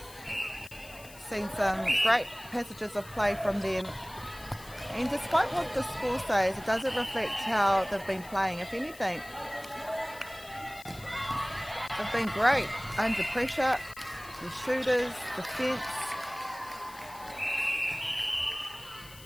Seen some great passages of play from them, and despite what the score says, it doesn't reflect how they've been playing. If anything, they've been great under pressure, the shooters, defence.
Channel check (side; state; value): left; noise; hiss, 19 dB below the sound